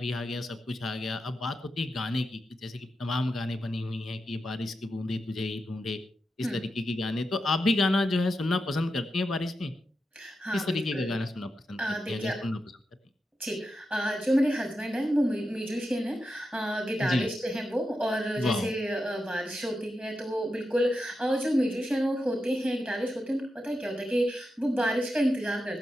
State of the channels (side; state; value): both; normal; correlation 0.88